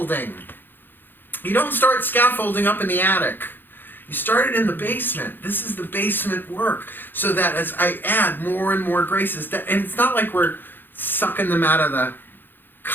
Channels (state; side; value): late; right; 0.096 ms